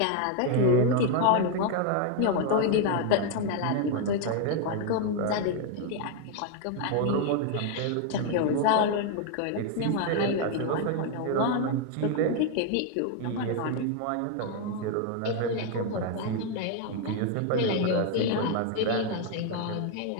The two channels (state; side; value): different; both; correlation 0.01